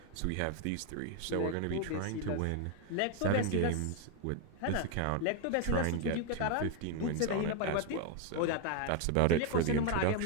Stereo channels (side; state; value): both; different; correlation 0.01